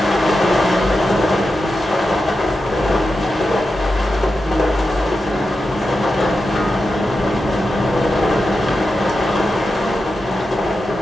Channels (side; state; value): both; normal; correlation 0.89